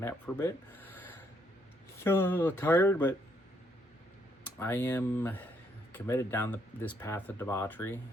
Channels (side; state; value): both; normal; correlation 0.72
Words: for a bit. So a little tired, but I am committed down this path of debauchery,